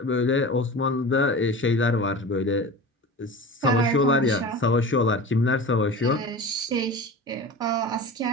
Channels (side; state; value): both; normal; correlation 0.33